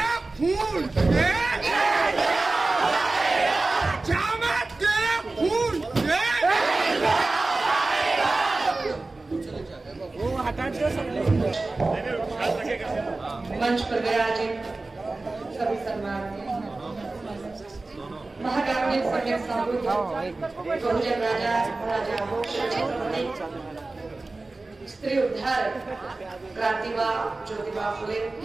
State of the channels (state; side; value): quieter; left; 3.3 dB